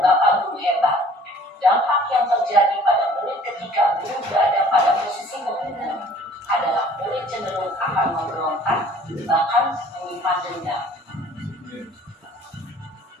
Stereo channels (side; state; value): both; normal; correlation 0.53